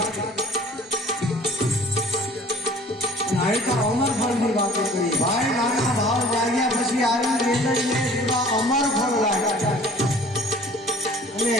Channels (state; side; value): normal; both; correlation 0.50